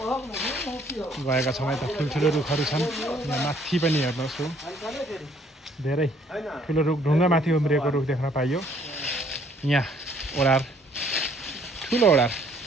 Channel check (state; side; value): normal; both; correlation 0.63